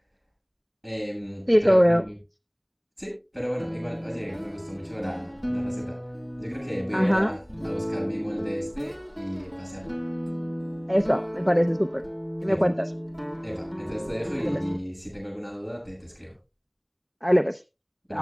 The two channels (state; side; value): identical; both; correlation 1.00